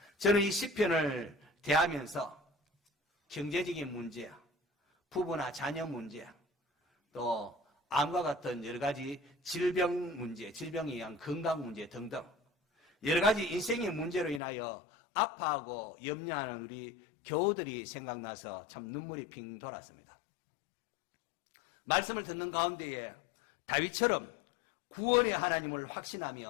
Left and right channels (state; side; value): drops out; right; at 14.4 s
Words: 저는 이 시편을 대하면서 경제적인 문제, 부부나 자녀 문제, 또 암과 같은 여러 가지 질병 문제, 질병에 의한 건강 문제 등등 여러 가지 인생의 문제로 인하여 아파하고 염려하는 우리 교우들이 생각나서 참 눈물이 핑 돌았습니다. 말씀을 듣는 가운데에 다윗처럼 구원의 하나님을